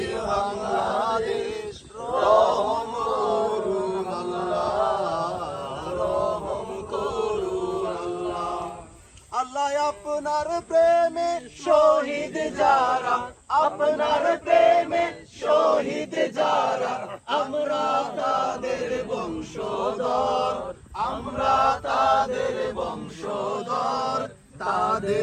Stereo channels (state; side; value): identical; both; correlation 1.00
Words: বাংলাদেশ। রহম করুন আল্লাহ, রহম করুন আল্লাহ। আল্লাহ আপনার প্রেমে শহীদ যারা, আপনার প্রেমে শহীদ যারা, আমরা তাদের বংশধর, আমরা তাদের বংশধর।